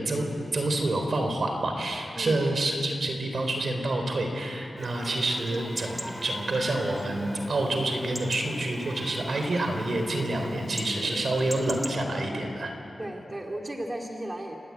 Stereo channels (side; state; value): both; normal; correlation 0.92